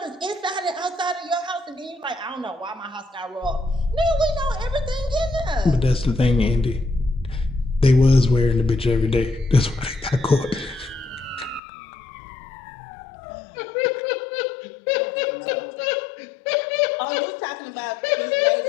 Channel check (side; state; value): right; drops out; at 11.6 s